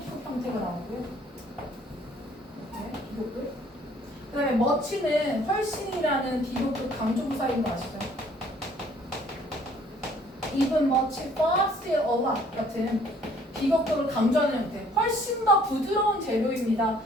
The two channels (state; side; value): normal; both; correlation 0.59